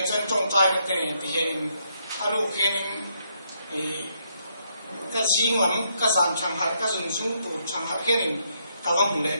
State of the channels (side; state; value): both; inverted; correlation -0.75